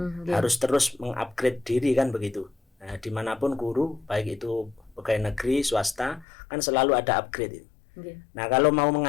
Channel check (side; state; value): right; drops out; at 6.2 s